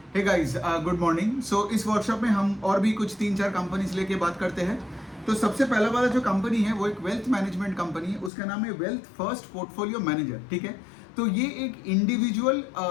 हे guys, good morning. So इस workshop में हम और भी कुछ 3-4 कंपनीज लेके बात करते हैं। तो सबसे पहला वाला जो कंपनी है वो एक वेल्थ मैनेजमेंट कंपनी है, उसका नाम है वेल्थ फर्स्ट पोर्टफोलियो मैनेजर। ठीक है, तो ये एक इंडिविजुअल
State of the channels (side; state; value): right; drops out; at 8.3 s